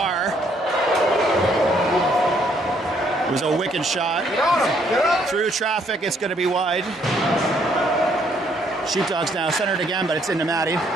It was a wicked shot. Get on him! Get on him! Through traffic, it's going to be wide. Sheepdogs now centered again, but it's into Matty.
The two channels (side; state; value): both; normal; correlation 0.68